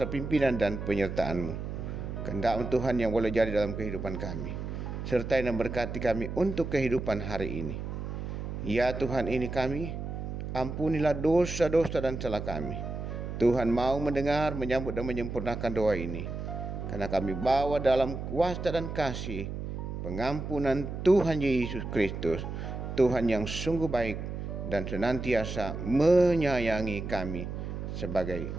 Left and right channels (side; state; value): right; noise; hum, 6 dB below the sound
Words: pimpinan dan penyertaan-Mu. Kehendak Tuhan yang boleh jadi dalam kehidupan kami. Sertai dan berkati kami untuk kehidupan hari ini. Ya Tuhan, ini kami, ampunilah dosa-dosa dan salah kami. Tuhan mau mendengar, menyambut dan menyempurnakan doa ini. Karena kami bawa dalam kuasa dan kasih pengampunan Tuhan Yesus Kristus, Tuhan yang sungguh baik dan senantiasa menyayangi kami sebagai